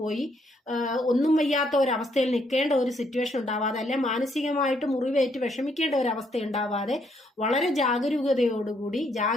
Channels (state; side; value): normal; both; correlation 0.72